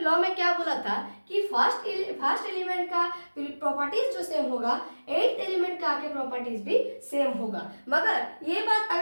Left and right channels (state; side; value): inverted; both; correlation -1.00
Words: में क्या बोला था कि फर्स्ट एलिमेंट का प्रॉपर्टीज जो सेम होगा, 8th एलिमेंट का आके प्रॉपर्टीज भी सेम होगा। मगर ये बात